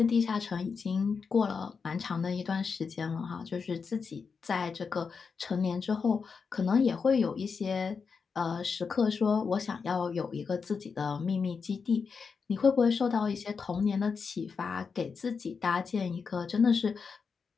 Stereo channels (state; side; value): quieter; right; 5.5 dB